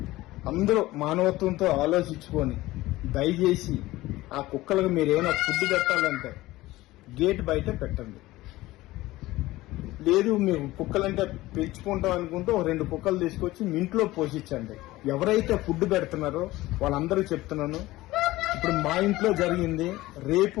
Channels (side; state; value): right; quieter; 18.0 dB